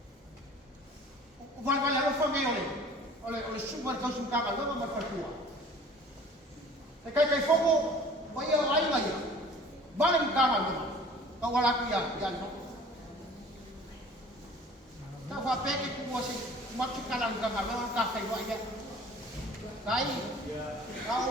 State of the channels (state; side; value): normal; both; correlation 0.48